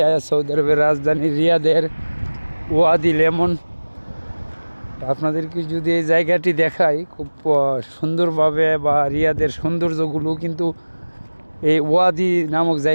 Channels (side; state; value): both; inverted; correlation -1.00